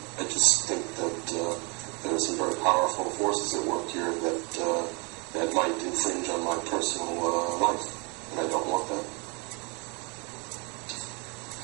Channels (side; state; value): left; quieter; 31.2 dB